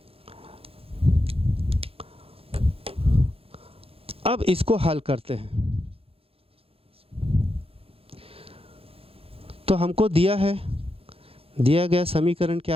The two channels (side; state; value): left; late; 0.28 ms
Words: अब इसको हल करते हैं। तो हमको दिया गया समीकरण